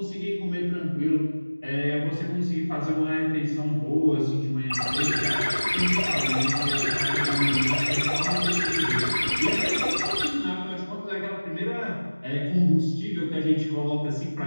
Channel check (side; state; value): both; inverted; correlation -1.00